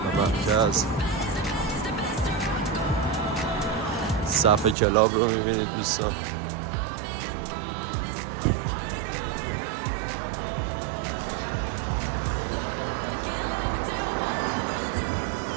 مرکز. صف کلاب رو میبینید دوستان.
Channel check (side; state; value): left; drops out; at 4.8 s